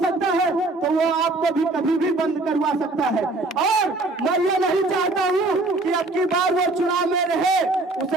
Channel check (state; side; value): quieter; left; 3.0 dB